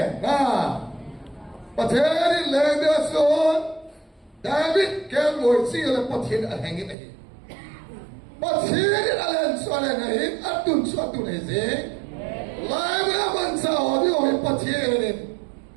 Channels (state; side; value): drops out; left; at 7.0 s